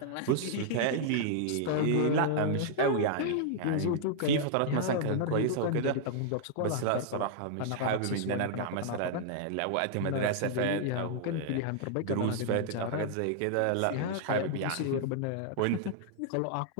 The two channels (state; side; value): different; both; correlation -0.01